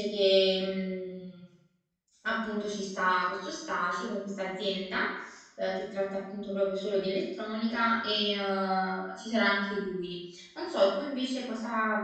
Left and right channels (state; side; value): identical; both; correlation 1.00